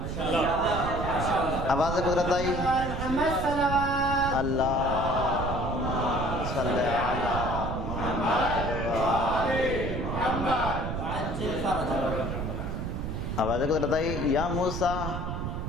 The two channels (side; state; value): right; noise; rumble, 4 dB below the sound